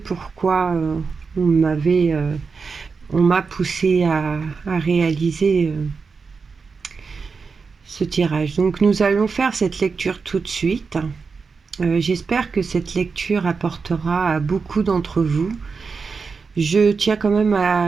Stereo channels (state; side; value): quieter; left; 5.0 dB